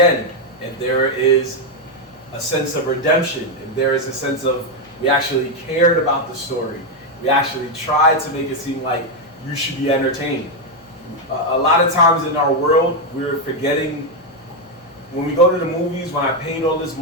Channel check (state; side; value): normal; both; correlation 0.04